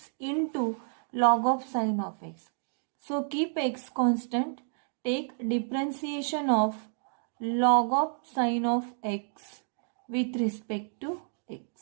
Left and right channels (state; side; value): silent; left; 58 dB below the other